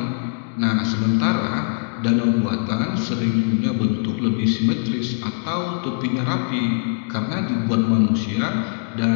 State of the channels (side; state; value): right; silent; digital silence